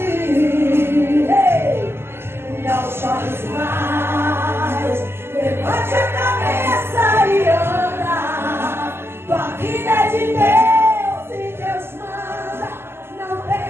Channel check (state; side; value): late; left; 0.12 ms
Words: Levante a cabeça e anda. Tua vida é de Deus e Deus manda. Não